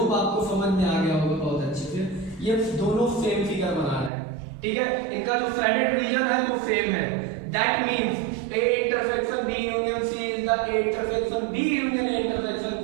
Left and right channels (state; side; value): drops out; left; at 4.1 s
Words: आपको समझ में आ गया होगा बहुत अच्छे से। ये दोनों सेम फिगर बना रहे हैं, ठीक है। इनका जो साइडेड रीजन है वो सेम है। That means A intersection B union C is the A intersection B union A intersection